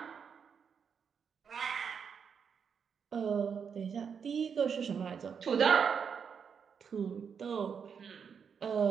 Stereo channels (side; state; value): left; quieter; 6.7 dB